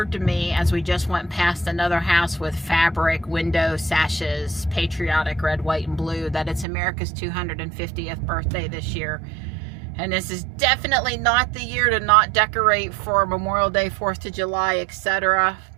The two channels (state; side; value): drops out; left; at 6.7 s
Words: to me as we just went past another house with fabric window sashes, patriotic red, white, and blue, that it's America's 250th birthday this year. And this is definitely not the year to not decorate for Memorial Day, 4th of July, etc.